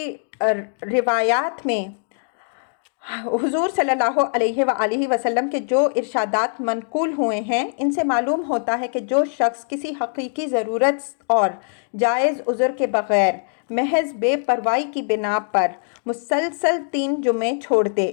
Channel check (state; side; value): silent; right; digital silence